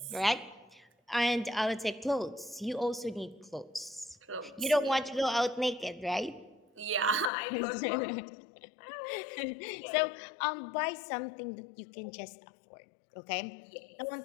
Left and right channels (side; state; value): right; drops out; at 7.3 s